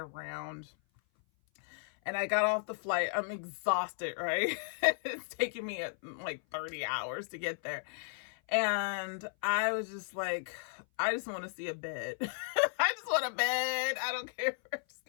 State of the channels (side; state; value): right; silent; 55 dB below the other